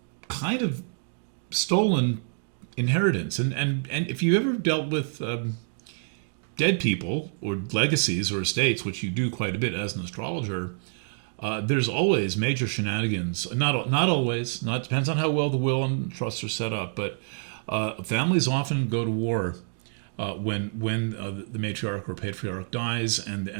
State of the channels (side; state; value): left; silent; digital silence